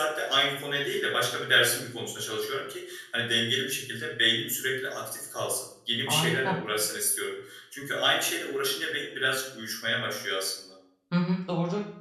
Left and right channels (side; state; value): both; identical; correlation 1.00